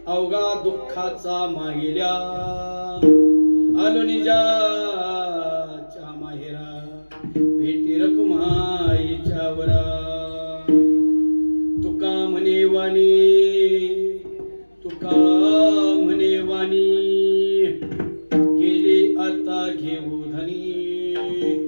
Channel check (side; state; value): both; inverted; correlation -1.00